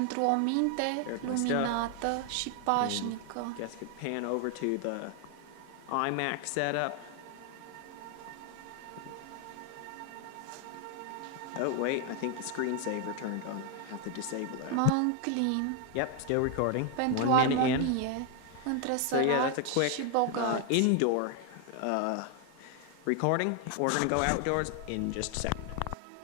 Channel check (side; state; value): both; different; correlation 0.01